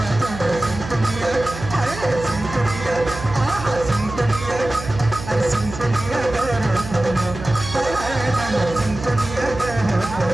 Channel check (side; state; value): right; noise; hum, 10 dB below the sound